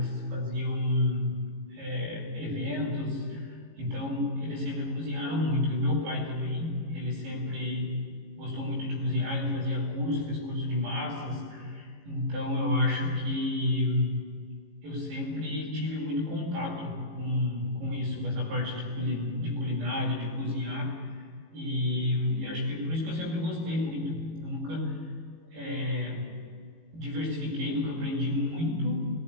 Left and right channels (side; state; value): left; late; 18 ms